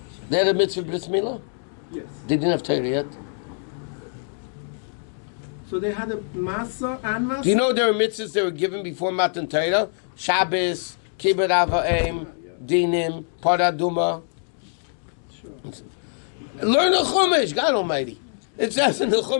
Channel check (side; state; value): right; silent; 62 dB below the other